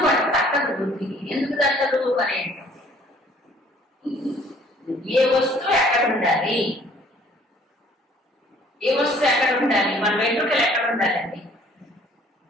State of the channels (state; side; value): normal; both; correlation 0.57